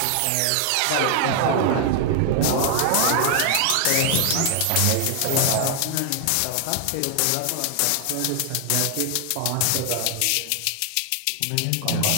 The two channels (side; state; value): both; different; correlation 0.00